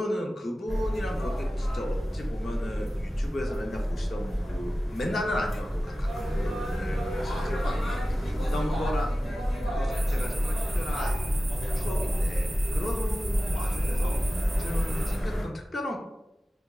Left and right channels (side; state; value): both; normal; correlation 0.95